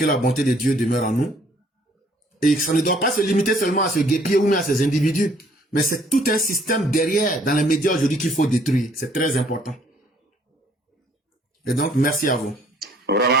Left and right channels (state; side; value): normal; both; correlation 0.62